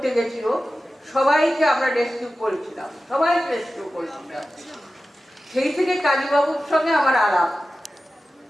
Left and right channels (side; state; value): both; normal; correlation 0.94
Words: গেছিল, সবাইকে আমরা রেস্কিউ করেছিলাম, সবাইকে রেস্কিউ করেছিলাম। সেই থেকে কালীবাবুর সঙ্গে আমার আলাপ,